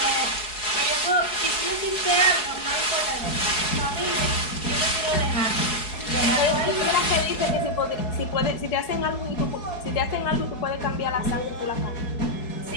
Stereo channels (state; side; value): late; right; 4.7 ms